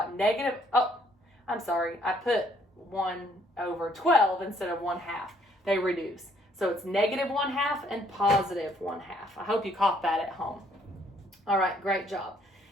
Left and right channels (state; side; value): normal; both; correlation 0.66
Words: negative, I'm sorry, I put 1 over 12 instead of 1/2. They reduce. So it's negative 1/2 and positive 1/2. I hope you caught that at home. All right, great job.